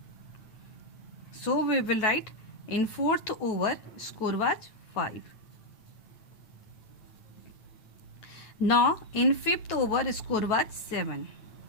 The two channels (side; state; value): right; late; 9.4 ms